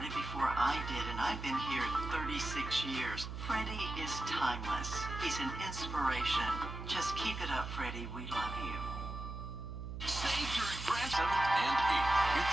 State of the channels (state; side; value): noise; right; hum, 7 dB below the sound